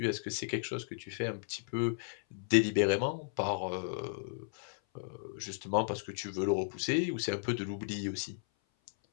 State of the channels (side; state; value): right; silent; 55 dB below the other